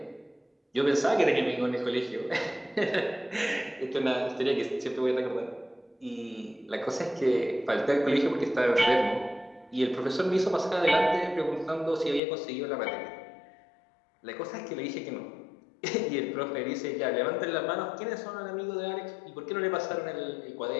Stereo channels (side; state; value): right; drops out; at 12.2 s